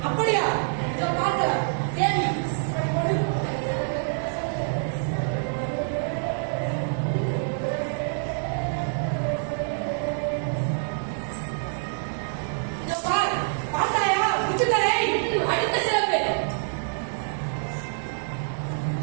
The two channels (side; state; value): left; silent; digital silence